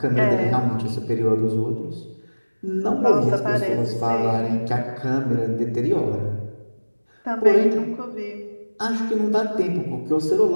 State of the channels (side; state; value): both; inverted; correlation -1.00